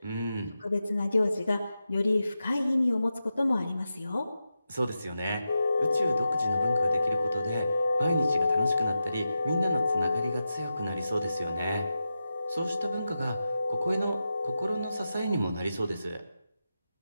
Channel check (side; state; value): both; inverted; correlation -0.90